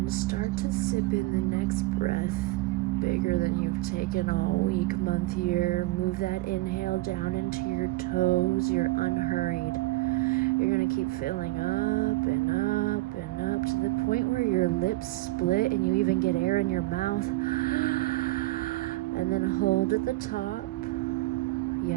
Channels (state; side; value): quieter; left; 19.4 dB